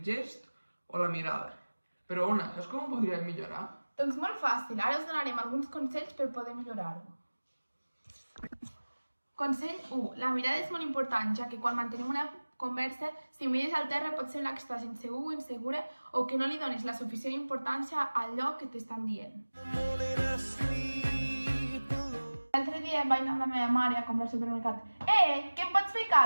gest o la mirada. Però, Ona, saps com ho podríem millorar? Doncs molt fàcil, ara us donarem alguns consells per poder millorar-ho. Consell 1. La mirada és molt important, ja que quan mantenim una conversa, si mires al terra pot semblar que estàs insegur o insegura o que no li dones la suficient importància al lloc que t'estan dient. L'altre dia vaig anar amb la meva mare a comprar al supermercat. Que em pots fer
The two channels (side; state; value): both; inverted; correlation -1.00